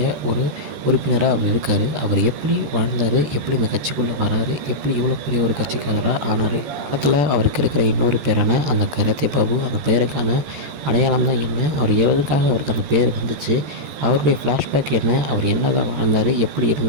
ஒரு உறுப்பினராக அவர் இருக்கார். அவர் எப்படி வாழ்ந்தார், எப்படி இந்த கட்சிக்குள்ளே வராரு, எப்படி இவ்வளோ பெரிய ஒரு கட்சிக்காரராக ஆனார். படத்தில் அவருக்கு இருக்கிற இன்னொரு பேரான அந்த கராத்தே பாபு, அந்த பேருக்கான அடையாளம் தான் என்ன, அவர் எதுக்காக அவருக்கு அந்த பேர் வந்துச்சு, அவருடைய ஃப்ளாஷ்பேக் என்ன, அவர் என்ன தான் வாழ்ந்தார், எப்படி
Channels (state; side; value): late; left; 14 ms